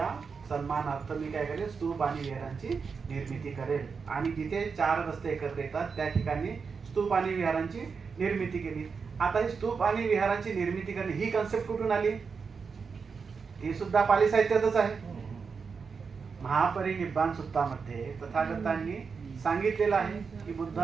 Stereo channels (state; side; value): quieter; left; 5.4 dB